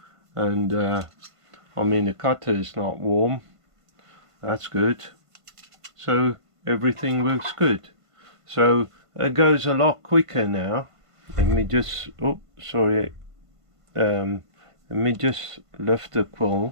And I mean, the cutter is not warm, that's good, so everything works good. So it goes a lot quicker now. Let me just, oh sorry, let me just lift the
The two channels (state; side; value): late; left; 1.5 ms